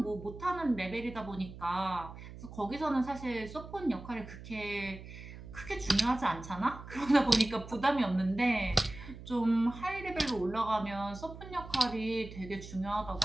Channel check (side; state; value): right; noise; hum, 14 dB below the sound